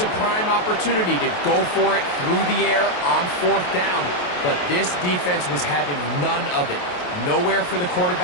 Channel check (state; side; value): late; right; 28 ms